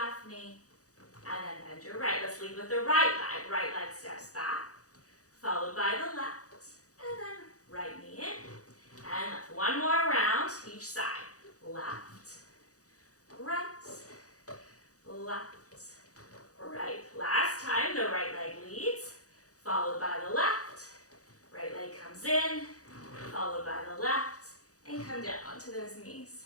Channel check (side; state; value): right; late; 0.66 ms